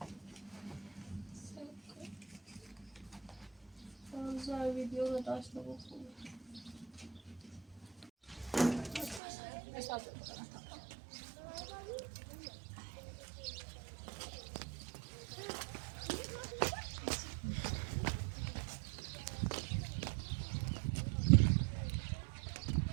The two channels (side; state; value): left; drops out; at 9.2 s